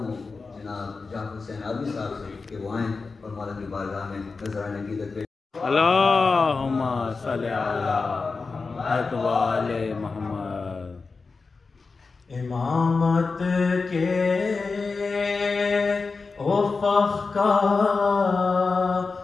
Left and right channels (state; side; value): quieter; right; 4.3 dB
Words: جناب جعفر حسین آبی صاحب سے کہ وہ آئیں اور مولا کی بارگاہ میں نذرانہ عقیدت پیش۔ اللہم صلی علی محمد و آل محمد۔ امامت کے افق کا